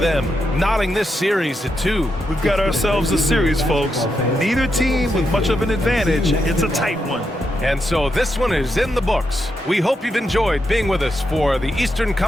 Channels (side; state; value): both; normal; correlation 0.84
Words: knotting this series at 2. We've got ourselves a series, folks. Neither team with much of an advantage. It's a tight one. And so this one is in the books. We hope you've enjoyed being with us for the Eastern